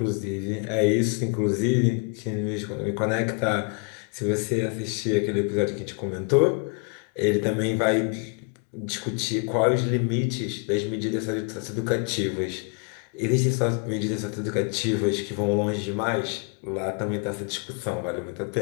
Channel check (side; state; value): right; quieter; 36.0 dB